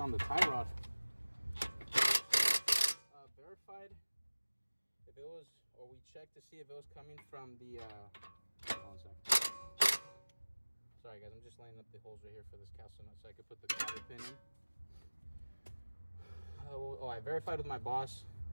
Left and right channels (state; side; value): inverted; both; correlation -1.00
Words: the tie rod. Verified if it was, or we checked to see if it was coming from the hold on a second. Sorry guys, I'm just lining up the holes right here for this castle nut so I could put the cotter pin in. I verified with my boss